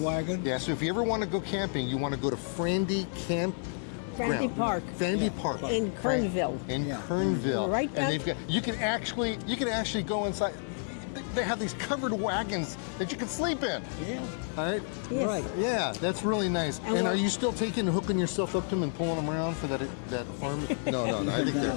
wagon. Yeah. So if you ever want to go camping, you want to go to Frandy Camp. Frandy Park. Frandy Park. In Kernville. In Yeah. Kernville. Right And down- they've got. You can actually go inside. They have these covered wagons that you can sleep in. Yeah. All right. Yes. Right. Yeah, that's really nice. And And we're- are you still hooking yourself up to them and pulling them around for that farm? No. I think they're.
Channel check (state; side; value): silent; right; 58 dB below the other